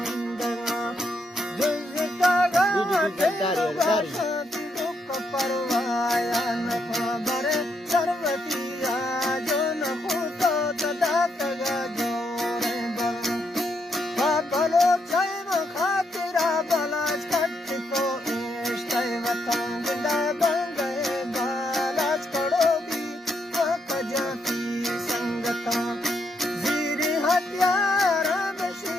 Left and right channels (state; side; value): normal; both; correlation 0.78